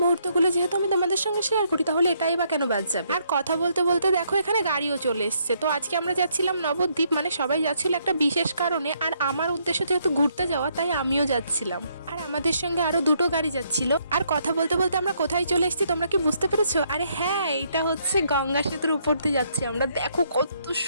মুহূর্তগুলো যেহেতু আমি তোমাদের সঙ্গে শেয়ার করি, তাহলে এটাই বা কেন বাদ যাবে। আর কথা বলতে বলতে দেখো এখানে গাড়িও চলে এসছে। তো আজকে আমরা যাচ্ছিলাম নবদ্বীপ, মানে সবাই যাচ্ছিল একটা বিশেষ কারণে, আর আমার উদ্দেশ্য যেহেতু ঘুরতে যাওয়া, তাই আমিও যাচ্ছিলাম। আর আমাদের সঙ্গে আরো দুটো গাড়ি যাচ্ছিল। আর কথা বলতে বলতে আমরা কোথায় চলে এসেছি তোমরা কি বুঝতে পেরেছো? আরে হ্যাঁ, এটা হচ্ছে গঙ্গা সেতুর উপর দিয়ে যাচ্ছি আমরা। দেখো কত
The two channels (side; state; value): both; inverted; correlation -0.72